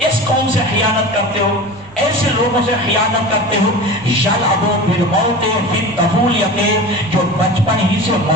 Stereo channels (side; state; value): right; noise; rumble, 24 dB below the sound